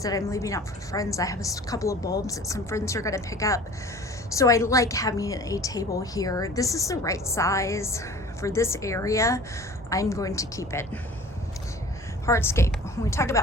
I'm leaving out for friends. I have a couple of bulbs that some friends are going to pick up. So I like having a table here. This is the right size for this area. I'm going to keep it. Hardscape. When we talk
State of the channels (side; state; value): both; normal; correlation 0.44